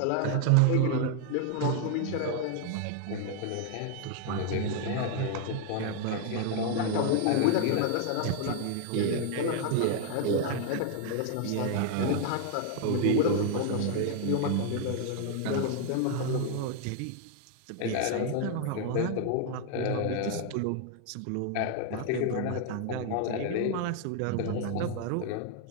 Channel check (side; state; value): both; different; correlation 0.00